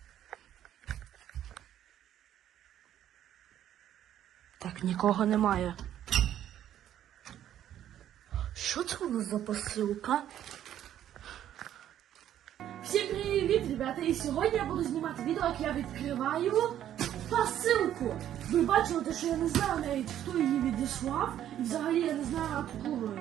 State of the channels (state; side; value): quieter; left; 11.2 dB